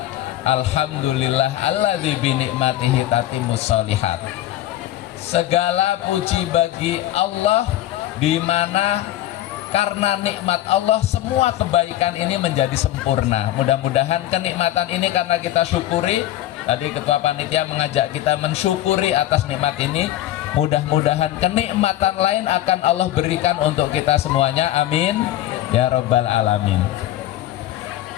alhamdulillah alladzi bi ni'matihi tatimmus sholihat. Segala puji bagi Allah, di mana karena nikmat Allah semua kebaikan ini menjadi sempurna. Mudah-mudahan kenikmatan ini karena kita syukuri. Tadi Ketua Panitia mengajak kita mensyukuri atas nikmat ini. Mudah-mudahan kenikmatan lain akan Allah berikan untuk kita semuanya. Amin ya rabbal alamin.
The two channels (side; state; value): right; quieter; 13.8 dB